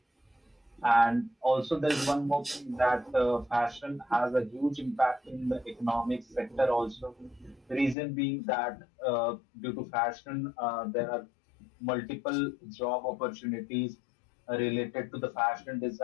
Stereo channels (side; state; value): right; drops out; at 8.0 s